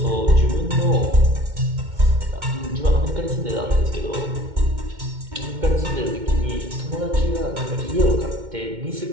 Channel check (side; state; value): left; late; 2.1 ms